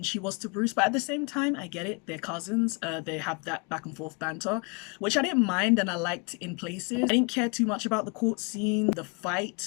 she was to Bruce, but at the same time, I get it. They're cousins. They have that back and forth banter, which I didn't mind and I liked in places. I didn't care too much about the court scene. The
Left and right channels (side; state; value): right; quieter; 33.1 dB